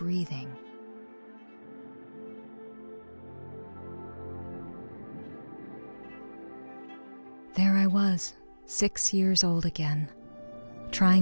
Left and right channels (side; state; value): both; inverted; correlation -1.00